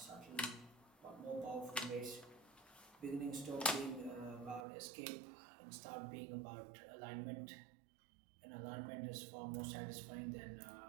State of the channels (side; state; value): left; drops out; at 4.7 s